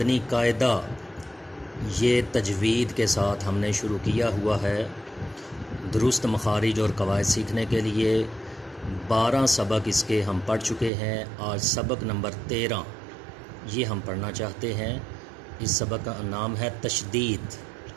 قاعدہ یہ تجوید کے ساتھ ہم نے شروع کیا ہوا ہے۔ درست مخارج اور قواعد سیکھنے کے لیے 12 سبق اس کے ہم پڑھ چکے ہیں۔ آج سبق نمبر 13 یہ ہم پڑھنا چاہتے ہیں۔ اس سبق کا نام ہے تشدید۔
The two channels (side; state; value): left; drops out; at 10.9 s